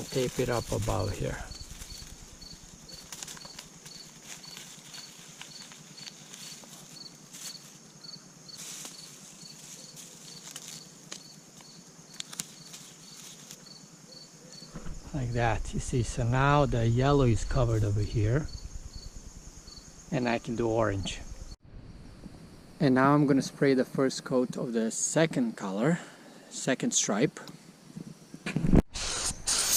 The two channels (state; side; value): identical; both; correlation 1.00